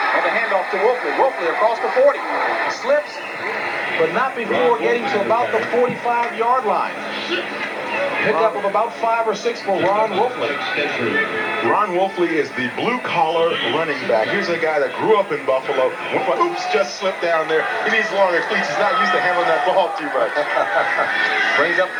And the handoff to Wolfley. Wolfley across the 40. Slips, but not before getting to about the 45-yard line. Pickup of about 5 or 6 for Ron Wolfley. Ron Wolfley is the blue-collar running back. Here's a guy that grew up in Buffalo. Oops, just slipped down there. He needs longer cleats. He's not used to handling that ball too much. Brings up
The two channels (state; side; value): identical; both; correlation 1.00